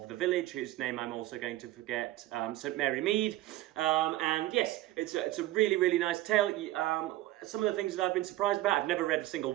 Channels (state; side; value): quieter; left; 16.3 dB